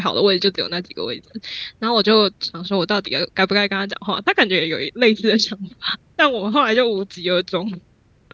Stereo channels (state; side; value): identical; both; correlation 1.00